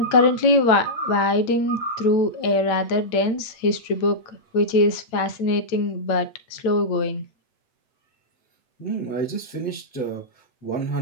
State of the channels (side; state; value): right; late; 8.9 ms